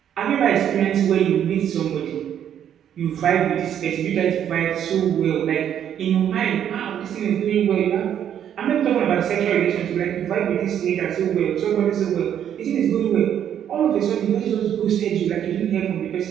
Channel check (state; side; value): quieter; left; 9.6 dB